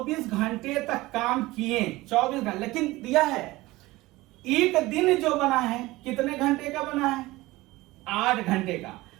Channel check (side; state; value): left; quieter; 19.4 dB